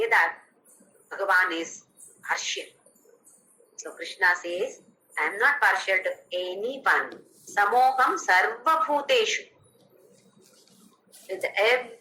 that Bhagavan is partial. So Krishna says, I am not partial to anyone. Samoham sarva bhuteshu. With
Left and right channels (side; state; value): both; identical; correlation 1.00